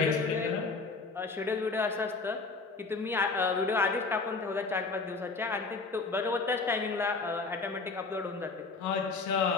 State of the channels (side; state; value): right; quieter; 4.1 dB